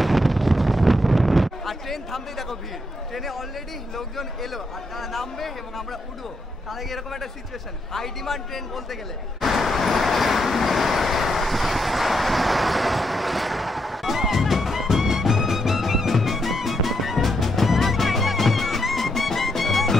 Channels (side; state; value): both; normal; correlation 0.79